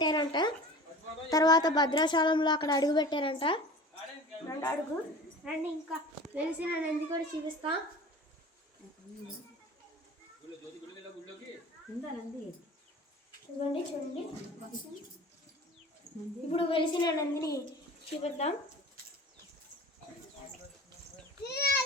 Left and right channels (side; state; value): both; normal; correlation 0.39